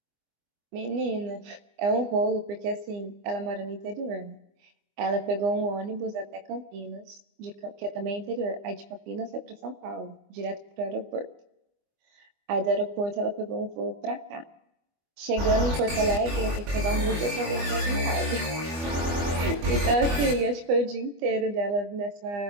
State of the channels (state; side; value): late; left; 25 ms